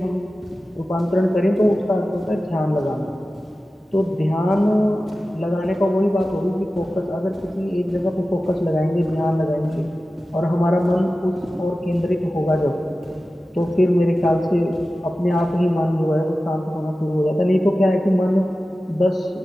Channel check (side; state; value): both; normal; correlation 0.95